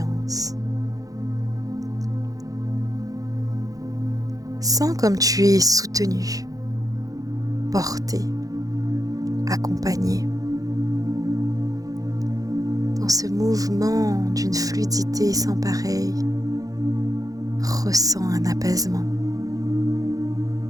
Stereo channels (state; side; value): late; left; 0.17 ms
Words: Sens comme tu es soutenu, porté, accompagné. Dans ce mouvement d'une fluidité sans pareil, ressens un apaisement.